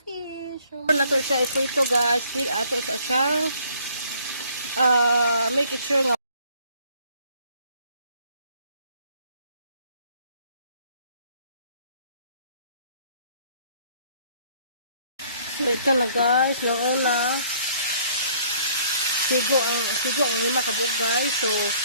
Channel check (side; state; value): both; inverted; correlation -0.60